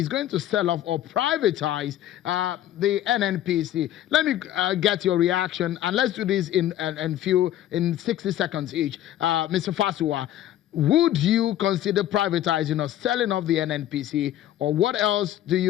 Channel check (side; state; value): right; quieter; 12.4 dB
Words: going to sell off or privatize the NNPC. Let me get your reaction, and let's do this in 60 seconds each. Mr. Fasuwa, would you consider privatizing or selling off the NNPC, or what else do